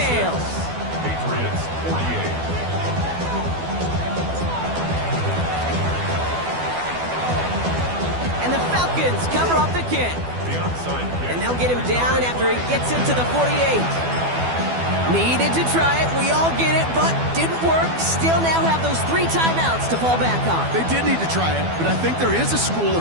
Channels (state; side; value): late; left; 12 ms